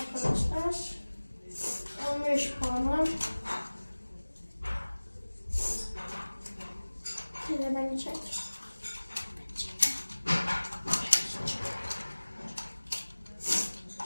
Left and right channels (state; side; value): inverted; both; correlation -1.00